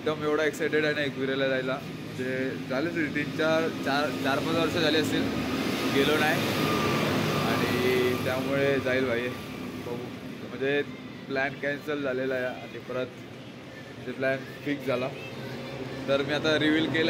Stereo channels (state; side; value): identical; both; correlation 1.00